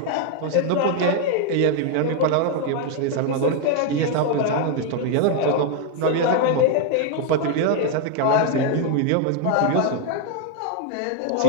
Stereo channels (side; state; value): both; different; correlation 0.01